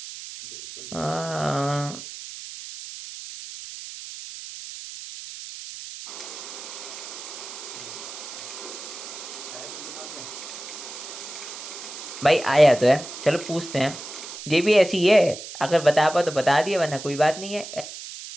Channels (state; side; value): noise; right; hiss, 11 dB below the sound